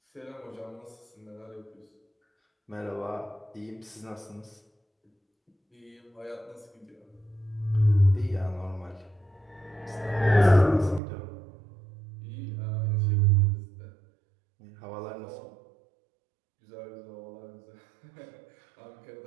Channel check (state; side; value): drops out; left; at 11.0 s